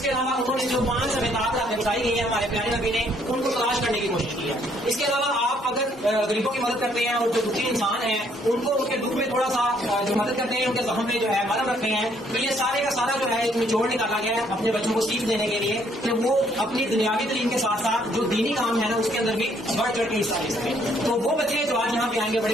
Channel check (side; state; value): both; normal; correlation 0.67